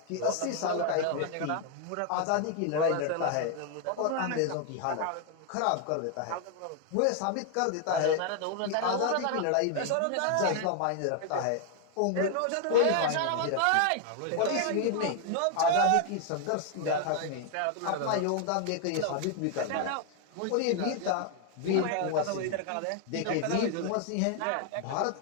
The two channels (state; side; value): different; both; correlation 0.00